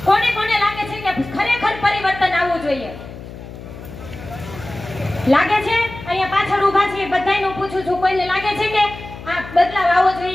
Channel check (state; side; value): noise; left; hum, 14 dB below the sound